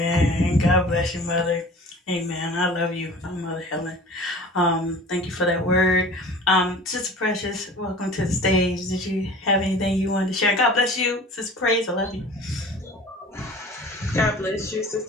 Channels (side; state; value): both; normal; correlation 0.42